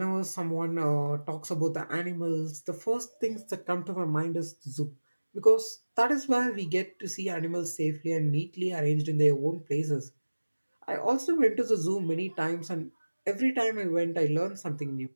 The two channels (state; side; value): inverted; both; correlation -1.00